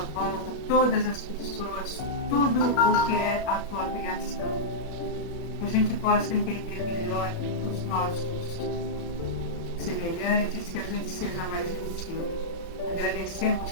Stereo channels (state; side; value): normal; both; correlation -0.10